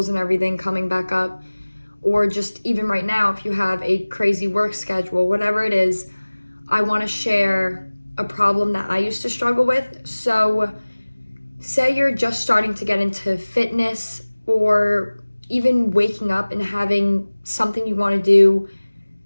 and everything coming back up, or just even right now, if you have a crazy work schedule, whatever it is, I want to share a problem that I used to struggle with. So, say you're just starting to get into fitness or even waking up and having something you want to do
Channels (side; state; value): both; inverted; correlation -1.00